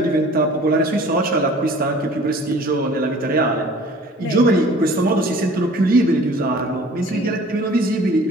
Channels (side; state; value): both; normal; correlation 0.49